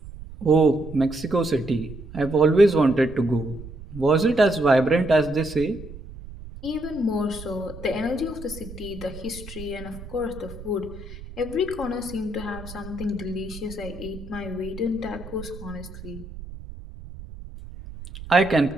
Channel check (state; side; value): noise; right; rumble, 14 dB below the sound